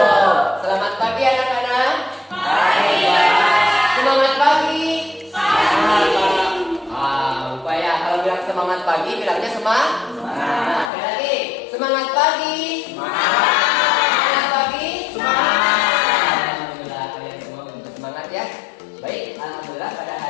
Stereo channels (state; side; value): drops out; right; at 10.9 s